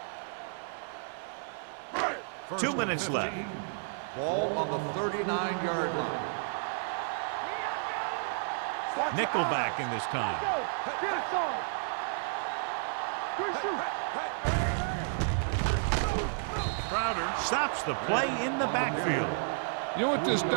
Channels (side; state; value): left; silent; 57 dB below the other